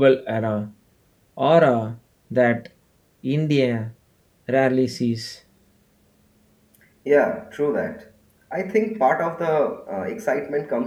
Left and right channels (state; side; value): identical; both; correlation 1.00